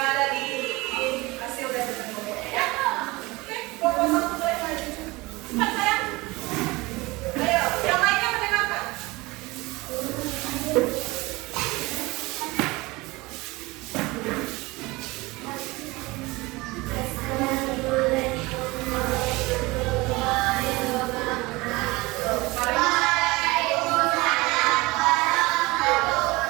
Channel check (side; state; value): left; quieter; 22.4 dB